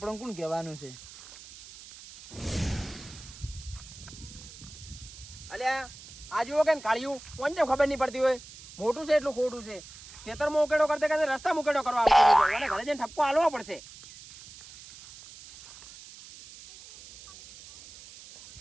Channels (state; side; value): noise; right; hiss, 17 dB below the sound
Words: કોણ કહેવાનું છે અલ્યા આ જુઓ કે કાળિયું કોણ છે ખબર નહીં પડતી હોય મોટું છે એટલું ખોટું છે ખેતરમાં ઉકેડો કરતે કરતે રસ્તા ઉકેડો કરવા આવતો અને ઘરે જઈને ઠપકો હાલવો પડશે